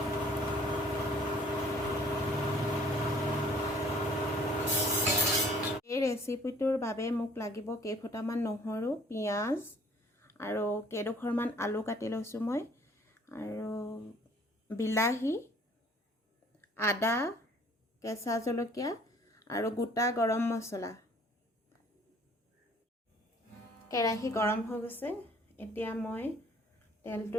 এই ৰেচিপিটোৰ বাবে মোক লাগিব কেইফুটামান নহৰু, পিঁয়াজ আৰু কেইডোখৰমান আলু কাটি লৈছোঁ মই, আৰু বিলাহী, আদা, কেঁচা জলকীয়া আৰু গোটা গৰম মছলা। কেৰাহী গৰম হৈ গৈছে, এতিয়া মই তেলটো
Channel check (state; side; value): normal; both; correlation 0.56